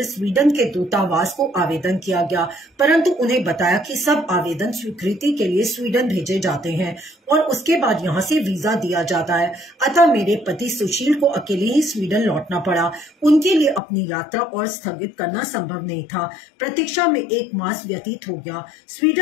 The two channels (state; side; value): drops out; right; at 13.8 s